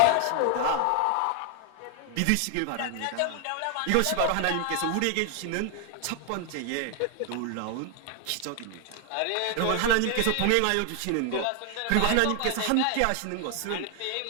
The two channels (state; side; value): different; both; correlation 0.00